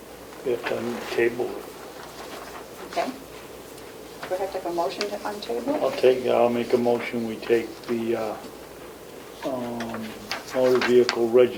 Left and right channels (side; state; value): both; identical; correlation 1.00